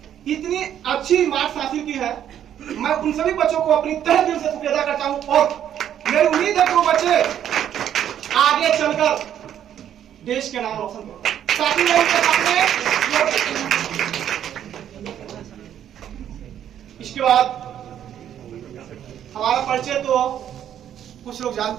इतनी अच्छी मार्क्स हासिल की है। मैं उन सभी बच्चों को अपनी तहे दिल से शुक्रिया अदा करता हूं और मेरी उम्मीद है कि वो बच्चे आगे चलकर देश के नाम रोशन करें ताकि मैं उनके सामने। इसके बाद हमारा परिचय तो कुछ लोग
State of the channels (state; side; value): quieter; left; 10.2 dB